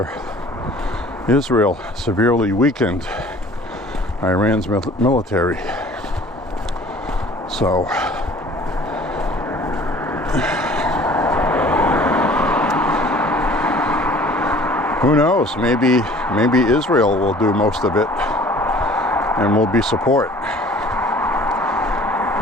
Israel severely weakened Iran's military. So, who knows? Maybe Israel will do most of it and will be support,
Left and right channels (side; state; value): both; normal; correlation 0.49